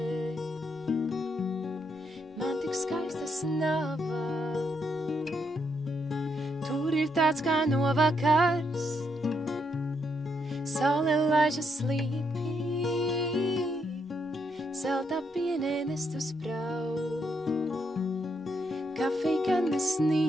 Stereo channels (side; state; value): both; normal; correlation 0.77